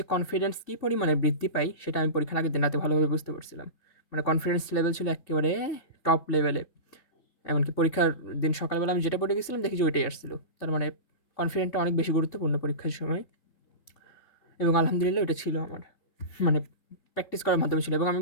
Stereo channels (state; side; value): late; right; 3.6 ms